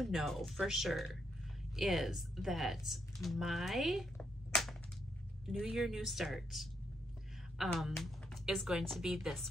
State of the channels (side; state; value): both; normal; correlation 0.77